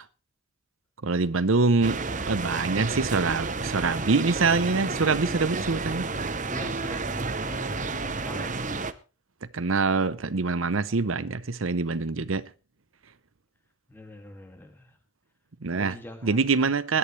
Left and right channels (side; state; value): left; quieter; 3.5 dB